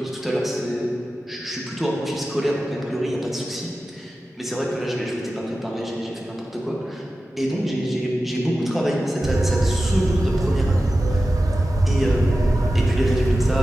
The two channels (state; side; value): normal; both; correlation 0.94